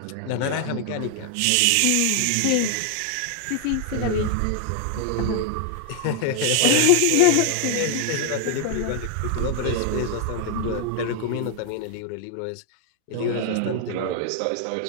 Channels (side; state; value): both; different; correlation 0.00